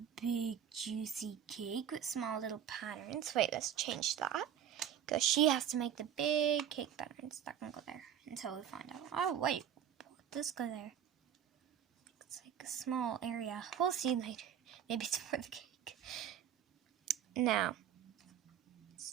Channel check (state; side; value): quieter; left; 9.4 dB